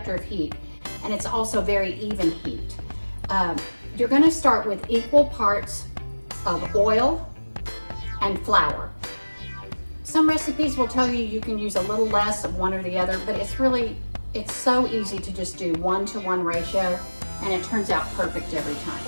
of heat, and it's also very even heat. You're gonna start with equal parts of oil and flour. Some recipes will tell you can use a little less of one or the other, but it's so easy to just do 1-to-1 ratio, and it turns out perfect every time.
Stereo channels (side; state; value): both; inverted; correlation -1.00